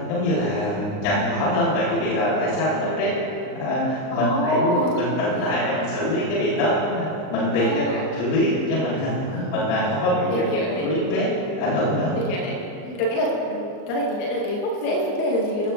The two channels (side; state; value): right; late; 39 ms